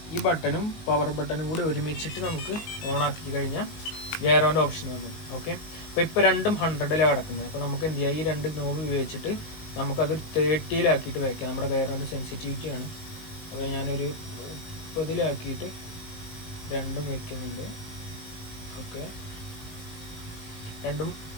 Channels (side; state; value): right; late; 19 ms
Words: ഈ ബട്ടണും പവർ ബട്ടണും കൂടി ഒരുമിച്ചിട്ട് നമുക്ക് ഓണാക്കി കഴിഞ്ഞാൽ ജെയറോൻ്റെ ഓപ്ഷൻ വന്നു. ഓക്കെ, ഇപ്പോൾ രണ്ടും 100ലാണ് കിടക്കുന്നത്. അപ്പോൾ നമുക്ക് എന്ത് ചെയ്യാം, ഈ രണ്ട് നോബ് ഉപയോഗിച്ചിട്ട് നമുക്കത് 30ലാക്കിയിട്ട് വയ്ക്കാം. നമ്മുടെ ജെയറോൻ്റെ സെൻസിറ്റിവിറ്റിയാണ്. അപ്പോൾ ഞാനൊരു 30ലാക്കിയിട്ട് രണ്ടും വയ്ക്കുന്നുണ്ട്. ഓക്കെ, രണ്ടും